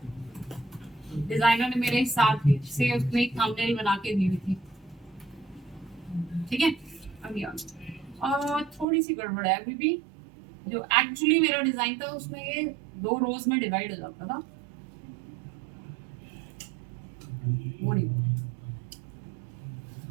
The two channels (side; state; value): left; drops out; at 8.8 s